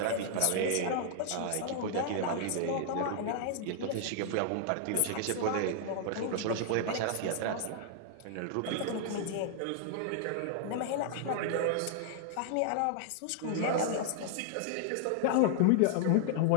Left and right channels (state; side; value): different; both; correlation -0.01